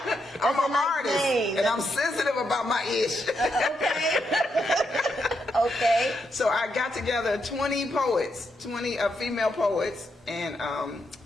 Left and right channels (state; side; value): normal; both; correlation 0.81